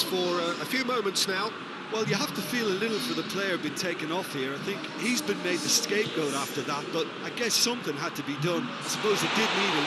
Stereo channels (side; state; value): both; identical; correlation 1.00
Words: for a few moments now. Well, you have to feel a little for the player being taken off here. I think he's been made the scapegoat after that, but I guess something had to be done. I suppose it did need a